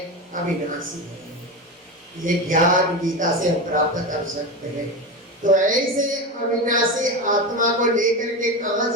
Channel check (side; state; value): both; normal; correlation 0.20